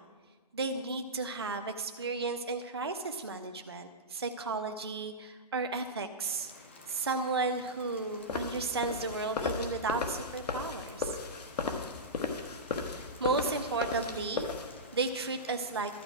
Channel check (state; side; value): normal; both; correlation -0.14